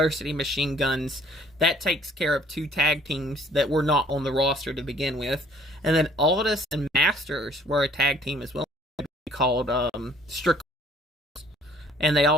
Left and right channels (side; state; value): both; normal; correlation 0.57